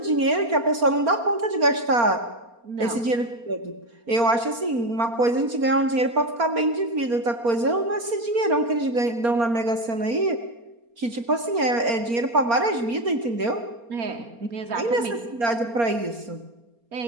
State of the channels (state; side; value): late; left; 4.3 ms